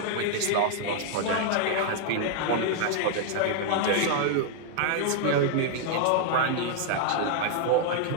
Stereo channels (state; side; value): different; both; correlation 0.00